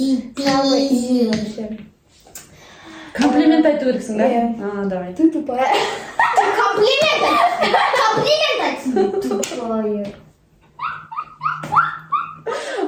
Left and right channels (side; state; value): both; identical; correlation 1.00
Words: Самый пизи. вообще. Комплимент айту керексің, да? Иә. А, давай. Ты тупая. Комплимент. Тупое.